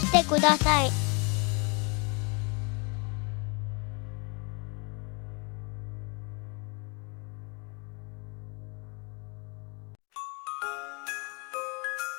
てください。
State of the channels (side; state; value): right; quieter; 32.5 dB